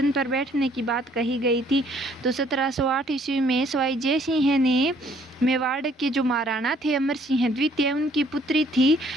पर बैठने की बात कही गई थी। तो 1708 ईस्वी में स्वाई जय सिंह ने मेवाड़ के जो महाराणा थे अमर सिंह द्वितीय, उनकी पुत्री थी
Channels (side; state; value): both; normal; correlation 0.62